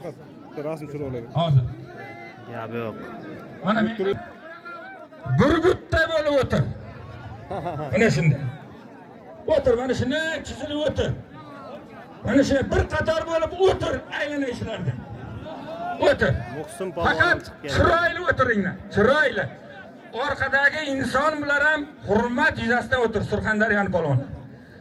Rasm turolaydi. Hozir. Gap yo'q. Mana men burgutda bo'lib o'tir. Mana shunday. O'tir, mana shunday chizilib o'tir. Mana shunday bir qator bo'lib o'tir aylanishlarda. O'tir. Muhsin polvon Faqat chiqib keldi. chiroyli o'tiringlar. Chiroyli. Orqadagi inson bilan ham hurmat yuzasidan o'tir Surxondaryoning polvoni.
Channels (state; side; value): identical; both; correlation 1.00